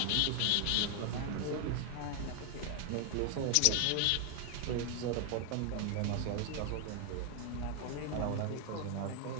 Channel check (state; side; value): different; both; correlation 0.01